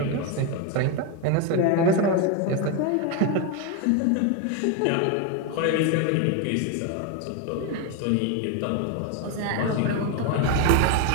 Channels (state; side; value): different; both; correlation 0.02